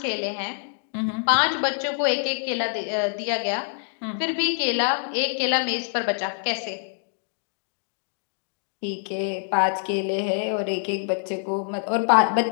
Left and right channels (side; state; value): right; silent; 61 dB below the other